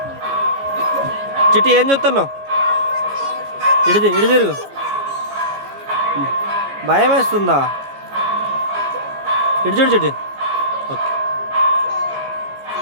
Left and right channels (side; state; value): left; late; 15 ms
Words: చిట్టి ఏం చూస్తున్నావు? ఇటు తిరుగు. భయం వేస్తుందా? ఇటు చూడు చిట్టి. ఓకే.